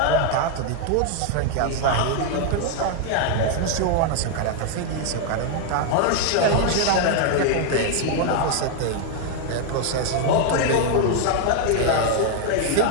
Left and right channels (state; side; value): different; both; correlation 0.00